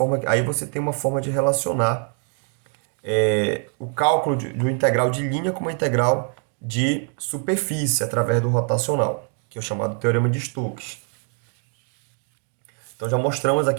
Aí você tem uma forma de relacionar o cálculo do integral de linha com uma integral de superfície através do rotacional, que é o chamado teorema de Stokes. Então já mostramos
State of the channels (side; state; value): left; quieter; 38.9 dB